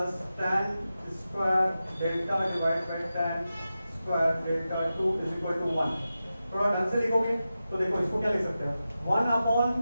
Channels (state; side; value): inverted; both; correlation -0.92